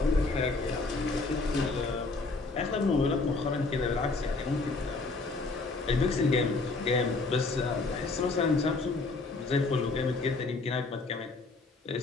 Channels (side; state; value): right; quieter; 3.7 dB